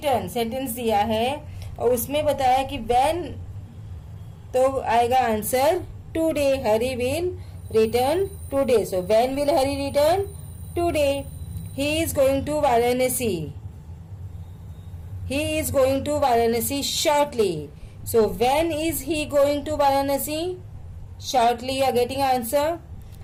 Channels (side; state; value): both; identical; correlation 1.00